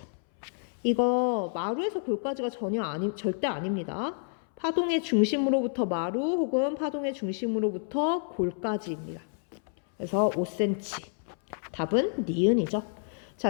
이거 마루에서 골까지가 절대 아닙니다. 파동의 중심으로부터 마루 혹은 파동의 중심으로부터 골까지입니다. 그래서 5cm. 답은 니은이죠.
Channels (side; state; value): right; silent; 58 dB below the other